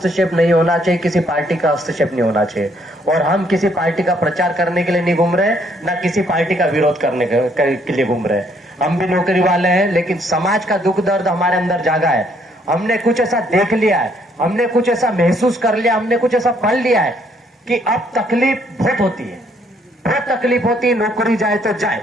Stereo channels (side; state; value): both; normal; correlation 0.67